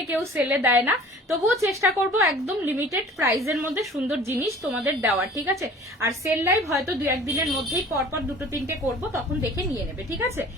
কেউ সেলে দেয় না। তবুও চেষ্টা করবো একদম লিমিটেড প্রাইসের মধ্যে সুন্দর জিনিস তোমাদের দেওয়ার, ঠিক আছে। আর সেল লাইভ হয়তো দু একদিনের মধ্যেই পরপর দুটো তিনটে করবো, তখন দেখে নিয়ে নেবে, ঠিক আছে।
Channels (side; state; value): both; normal; correlation 0.46